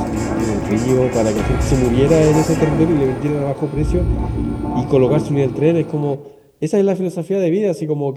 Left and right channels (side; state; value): both; identical; correlation 1.00